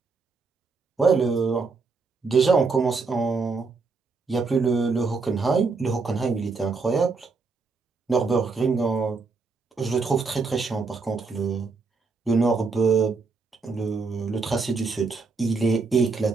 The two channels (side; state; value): left; quieter; 4.3 dB